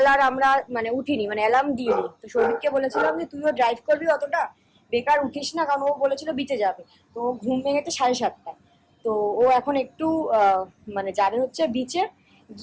আর আমরা উঠিনি, অ্যালার্ম দিইনি। তো সৌভিককে বলেছিলাম যে তুইও ড্রাইভ করবি, অতটা বেকার উঠিস না, কারণ ও বলেছিল বিচে যাবে। তো ঘুম ভেঙেছে 7:30টায়। তো ও এখন একটু যাবে হচ্ছে বিচে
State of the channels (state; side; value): identical; both; correlation 1.00